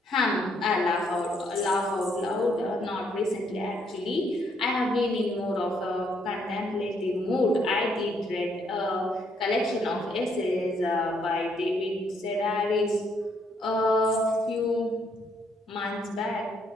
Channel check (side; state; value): both; normal; correlation 0.71